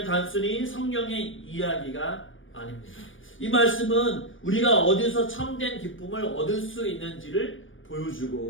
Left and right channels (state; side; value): late; right; 0.57 ms